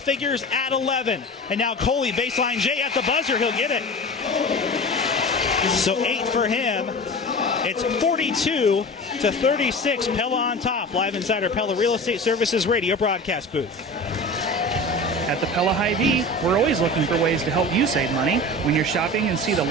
at 11. And now Coley, baseline J at the buzzer. He'll get it. So 8 for him. It's 42-36. Pella on top. Live inside our Pella Real Estate Services radio broadcast booth. At the Pella Hy-Vee, we're always looking for ways to help you save money. When you're shopping and see the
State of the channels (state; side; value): normal; both; correlation 0.33